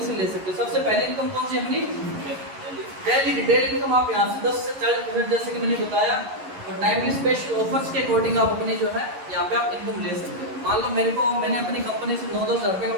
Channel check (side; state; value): left; late; 11 ms